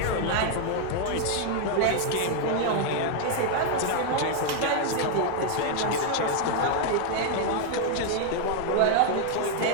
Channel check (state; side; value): different; both; correlation 0.01